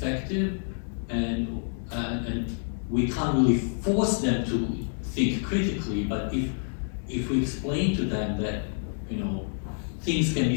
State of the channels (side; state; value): right; silent; digital silence